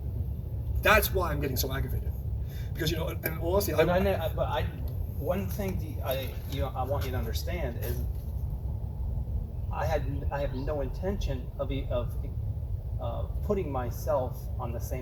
That's why I'm getting so aggravated. Because, and honestly, one thing I want you to understand is I have no intention of putting myself on the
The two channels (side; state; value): both; identical; correlation 1.00